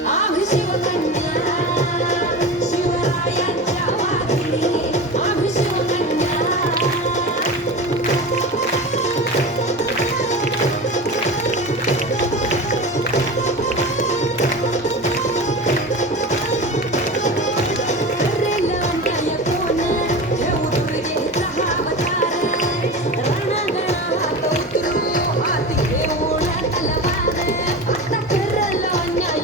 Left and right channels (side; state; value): both; normal; correlation 0.30